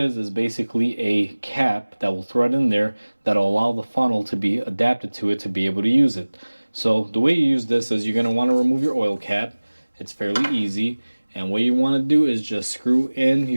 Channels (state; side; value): inverted; both; correlation -1.00